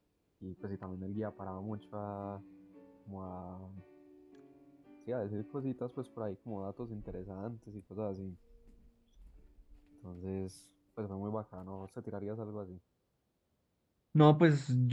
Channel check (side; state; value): both; identical; correlation 1.00